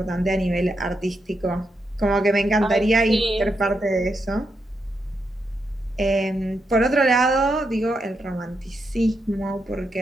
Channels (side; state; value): both; normal; correlation 0.83